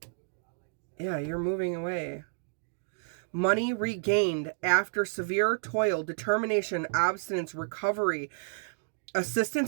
Yeah, you're moving away. Money regained after severe toil, determination, abstinence, recovery,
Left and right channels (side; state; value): left; silent; digital silence